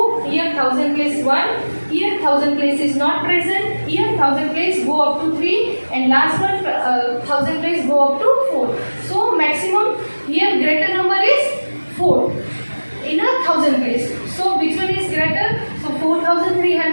here 1000 place 1, here 1000 place is not present, here 1000 place go up to 3 and last one 1000 place go up to 4. So maximum here greater number is 4 in a 1000 place. So which one is greater? So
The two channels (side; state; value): both; inverted; correlation -1.00